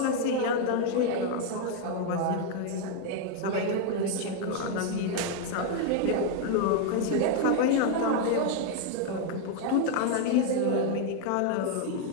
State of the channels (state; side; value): different; both; correlation 0.01